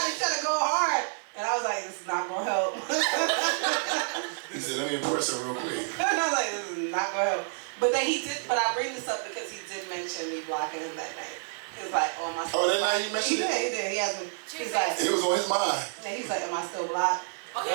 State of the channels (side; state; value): left; silent; 59 dB below the other